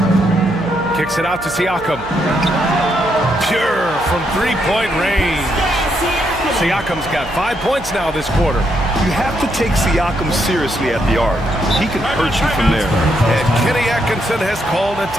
Kicks it out to Siakam. Pure from 3-point range. Siakam's got 5 points now this quarter. You have to take Siakam seriously at the arc. He can hurt you from there. And Kenny Atkinson has called a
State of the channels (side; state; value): right; noise; hum, 14 dB below the sound